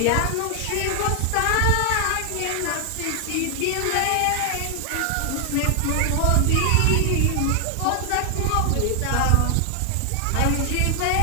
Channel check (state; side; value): different; both; correlation 0.00